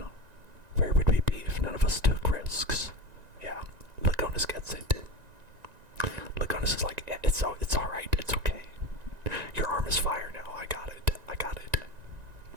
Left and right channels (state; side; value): late; left; 1.9 ms